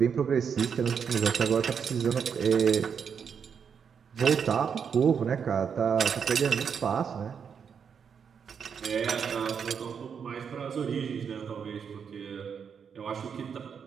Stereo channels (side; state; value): left; quieter; 6.9 dB